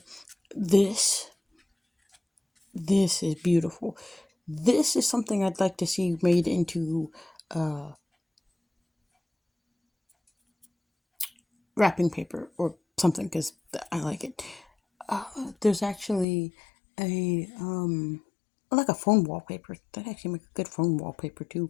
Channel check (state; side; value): drops out; right; at 16.2 s